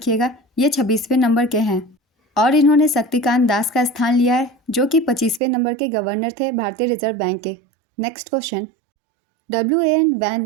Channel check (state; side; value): drops out; left; at 5.4 s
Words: ये 26वें नंबर के हैं और इन्होंने शक्तिकांत दास का स्थान लिया है जो कि 25वें नंबर के गवर्नर थे भारतीय रिजर्व बैंक के। नेक्स्ट क्वेश्चन,